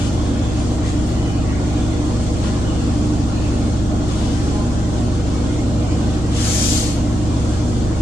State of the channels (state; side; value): normal; both; correlation 0.86